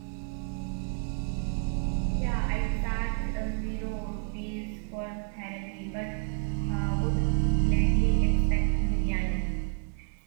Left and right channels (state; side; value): silent; left; 56 dB below the other